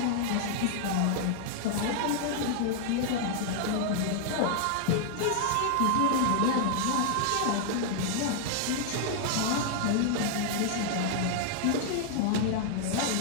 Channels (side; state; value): both; different; correlation 0.00